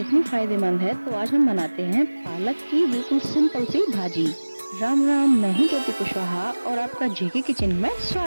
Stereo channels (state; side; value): inverted; both; correlation -1.00